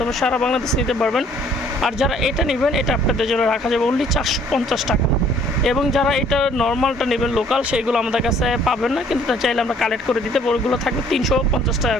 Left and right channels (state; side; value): normal; both; correlation 0.59